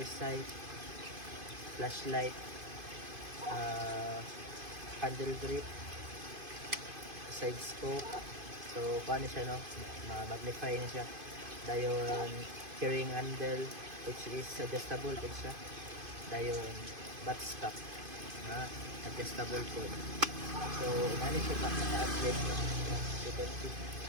side flashlight, handle grip, side scope. So paano siya, no? Magnify na siya. Dayon carrying handle which is adjustable din siya. Dayon butt stop na adjustable po. So nani siya pa naka-upgrade na. You can see.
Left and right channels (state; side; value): late; left; 2.5 ms